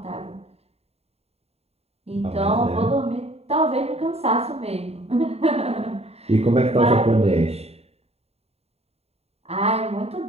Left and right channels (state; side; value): late; left; 0.30 ms